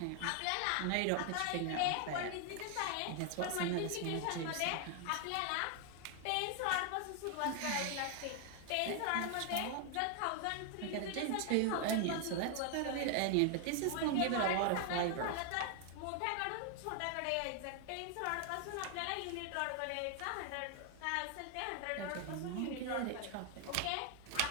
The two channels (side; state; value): both; different; correlation 0.00